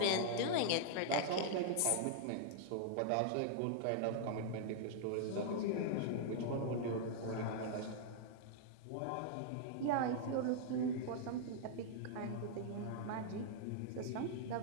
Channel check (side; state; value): both; different; correlation -0.01